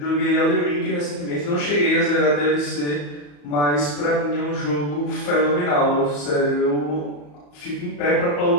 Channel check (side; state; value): right; late; 34 ms